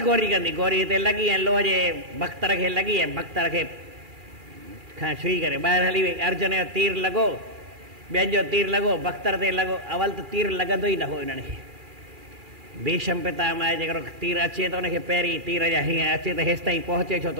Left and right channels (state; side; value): late; left; 2.4 ms